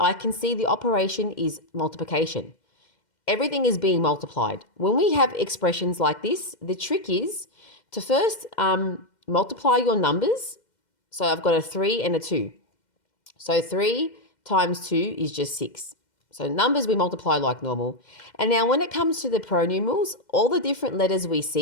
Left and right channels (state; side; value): late; right; 2.1 ms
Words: can see the operation is multiplication. Everything is being multiplied. When we have expressions like this, the trick is to first multiply your numbers. So I've got a 3 and a 2. So 3 times 2 is just 6. So numbers we multiply like normal. And now when it comes to the pronumerals, all the different letters we